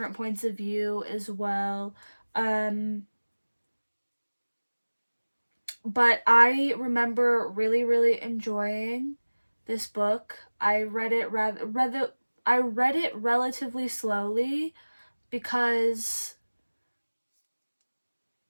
points of view as well. Um, but I remember really, really enjoying this book. I read it relatively slowly because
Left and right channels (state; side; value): inverted; both; correlation -1.00